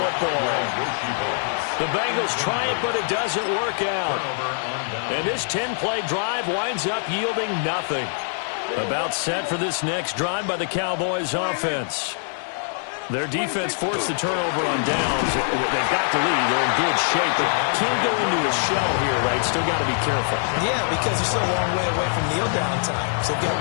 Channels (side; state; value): right; silent; digital silence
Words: The Bengals try it, but it doesn't work out. And this 10-play drive winds up yielding nothing. About set for this next drive by the Cowboys offense. Their defense forced the turnover on downs. They've got the lead. They're in good shape, but can't go into a shell here, right? Still got to be careful. Yeah, because they're still a long way away from kneel down time. So they've got